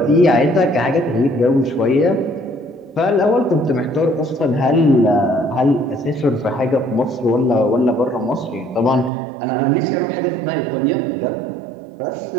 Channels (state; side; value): drops out; left; at 9.1 s